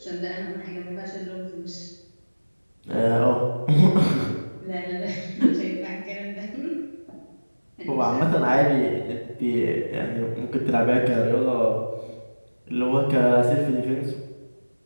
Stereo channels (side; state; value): both; inverted; correlation -1.00